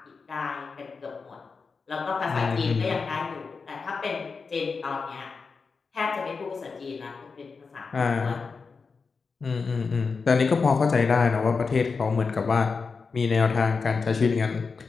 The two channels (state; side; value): quieter; right; 4.8 dB